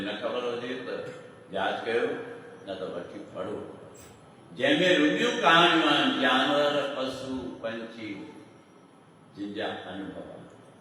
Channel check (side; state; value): both; identical; correlation 1.00